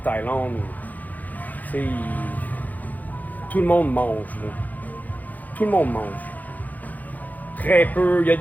Tout le monde mange. Là. Tout le monde mange. Très peu. Il y a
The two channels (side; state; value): right; late; 0.081 ms